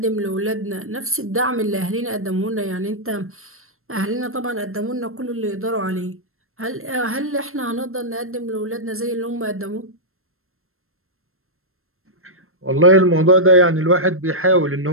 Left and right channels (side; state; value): left; late; 0.62 ms